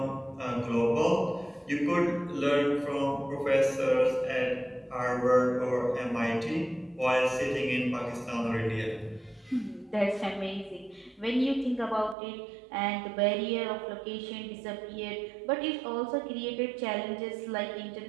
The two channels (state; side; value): drops out; left; at 12.2 s